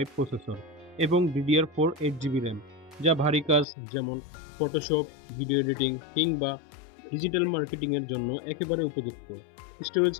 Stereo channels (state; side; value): drops out; right; at 3.7 s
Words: processor এবং DDR4 8GB RAM, যা ভারী কাজ যেমন ফটোশপ, ভিডিও এডিটিং কিংবা ডিজিটাল মার্কেটিং এর জন্য একেবারে উপযুক্ত। স্টোরেজ